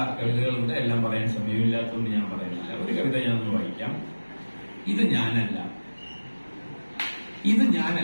കവിതകളുണ്ട്, എല്ലാം പറയാൻ സമയമില്ലാത്തതുകൊണ്ട് ഞാൻ പറയുന്നില്ല. ഒരു കവിത ഞാനൊന്ന് വായിക്കാം. ഇത് ഞാനല്ല, ഇത്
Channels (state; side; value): inverted; both; correlation -1.00